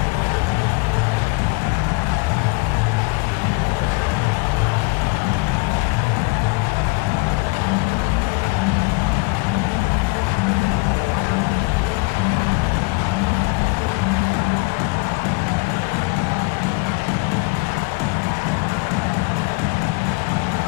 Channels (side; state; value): right; quieter; 28.1 dB